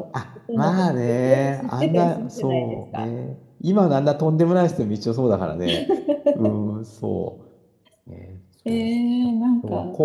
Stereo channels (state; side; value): identical; both; correlation 1.00